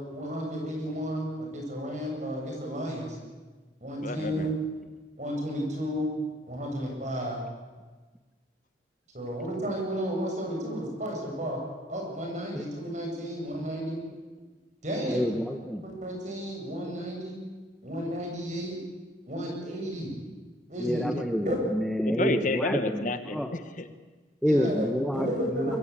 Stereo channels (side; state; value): both; normal; correlation 0.64